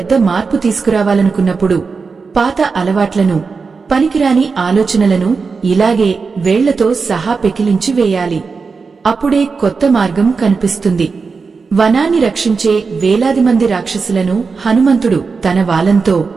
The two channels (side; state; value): left; quieter; 4.8 dB